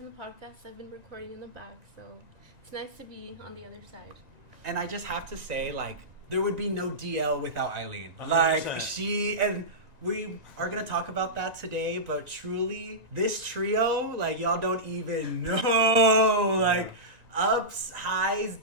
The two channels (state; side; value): late; left; 1.9 ms